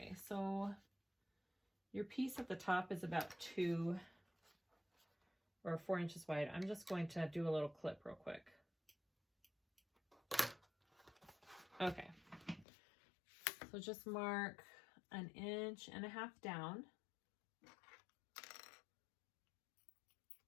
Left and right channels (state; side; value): drops out; right; at 12.7 s